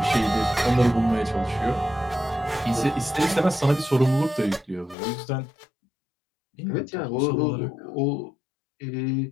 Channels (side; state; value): right; drops out; at 5.0 s